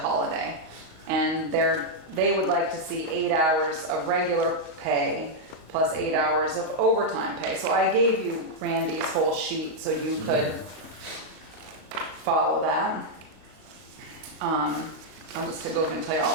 And they would like to see 8 hours of regular pay plus 8 hours of overtime pay. So I gave you Randy's whole sheet so you could follow that. I'll just go over and tell you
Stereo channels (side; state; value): left; late; 32 ms